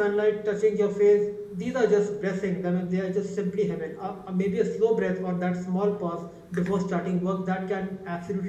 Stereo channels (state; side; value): identical; both; correlation 1.00